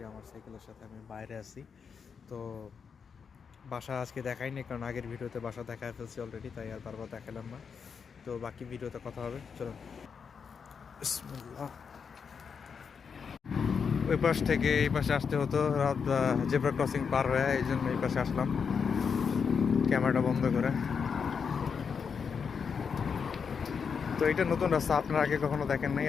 আমার সাইকেলের সাথে আমি বাইরে আছি। তো বাসা আজকে দেখাইনি, কারণ আগের ভিডিওতে বাসা দেখায় ফেলছি অলরেডি, তাই আর বারবার দেখালাম না। তো বাকি ভিডিওতে কথা হবে, চলুন। বিসমিল্লাহ। ওই পাশ থেকে এই পাশে আসতে হতো, রাত জেব্রা ক্রসিং পার হয়ে, এই জন্য এই পাশে আসলাম ক্যামেরাটা বন্ধ করে। তো এটা নতুন রাস্তা, আপনারা আগে কখনো দেখেন নাই,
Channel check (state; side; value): quieter; right; 6.2 dB